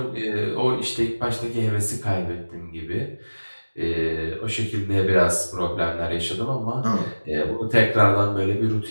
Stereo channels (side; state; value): both; inverted; correlation -1.00